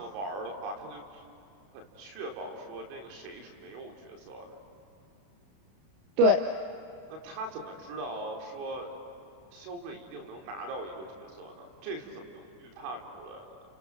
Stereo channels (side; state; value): left; late; 32 ms